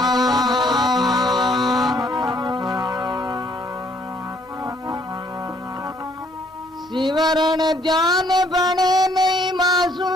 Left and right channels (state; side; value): normal; both; correlation 0.65